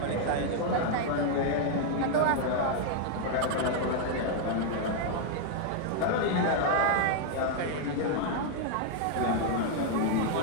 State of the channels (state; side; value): different; both; correlation 0.00